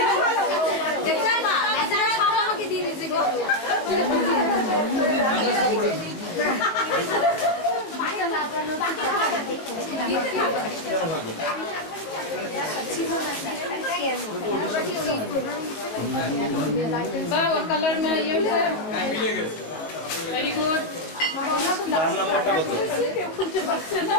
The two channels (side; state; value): right; late; 19 ms